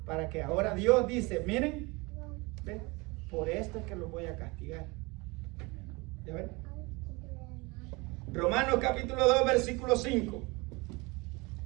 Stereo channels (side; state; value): left; quieter; 25.6 dB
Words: para que ahora Dios dice, miren, ¿ven? Por esto es que los voy a castigar. ¿Ya ven? Romanos capítulo 2, versículo 5.